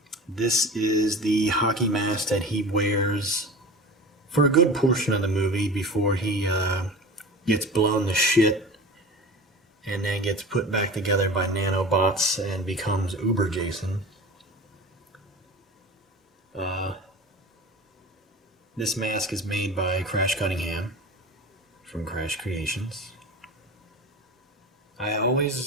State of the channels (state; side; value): normal; both; correlation 0.35